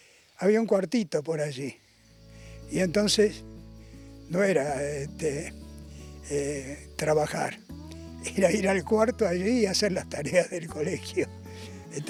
había un cuartito por allí. Y entonces no era trabajar, era ir al cuarto allí y hacer las tareas del colegio. De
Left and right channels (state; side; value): identical; both; correlation 1.00